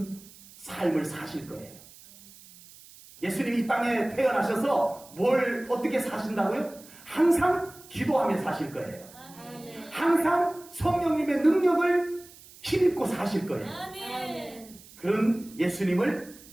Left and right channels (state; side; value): noise; right; hiss, 21 dB below the sound